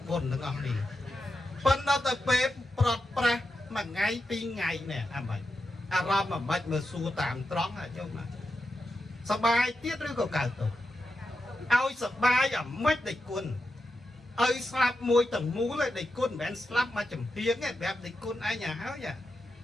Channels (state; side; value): normal; both; correlation 0.88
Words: បុណ្យទាំងអស់នេះប៉ុន្តែទៅពេលប្រត់ប្រាស់មួយថ្ងៃពីរថ្ងៃនេះអាម៉េចអារម្មណ៍អាម៉េចមើលសួរតាមត្រង់ញោមសប្បាយទៀតឬក៏កើតទុក្ខឲ្យសប្បាយអាម៉េចដេចគុណឲ្យស្លាប់មួយទាំងមូលឯដេចគុណមិនមែនស្លាប់មកចំហៀងទេប្រាប់ដេចគុណឯងហើយ